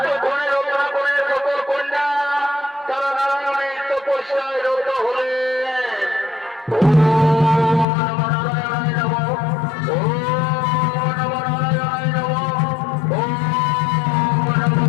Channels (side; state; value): right; drops out; at 7.9 s